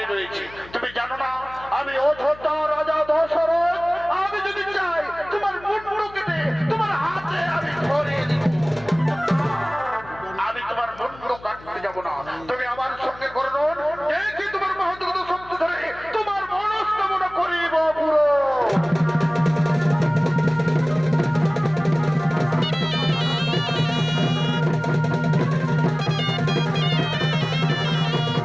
রয়েছে। তুমি জানো না আমি অযোধ্যা রাজা দশরথ, আমি যদি চাই তোমার মুন্ড কেটে তোমার হাতে আমি ধরিয়ে দিব। আমি তোমার মুন্ড কাটতে যাব না, তুমি আমার সঙ্গে করুন, দেখি তোমার মহৎগত শক্তি ধরে তোমার মনস্কামনা করিব পুরো।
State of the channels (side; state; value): left; noise; hum, 20 dB below the sound